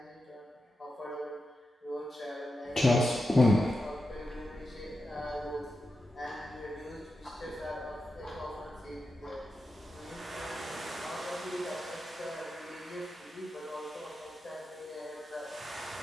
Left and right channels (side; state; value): both; normal; correlation 0.89